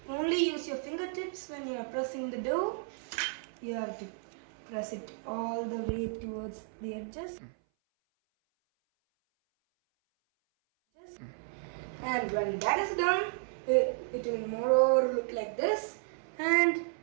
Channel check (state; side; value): silent; left; 56 dB below the other